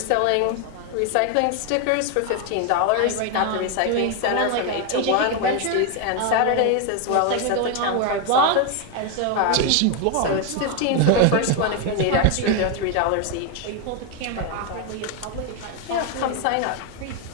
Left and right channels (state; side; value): different; both; correlation 0.01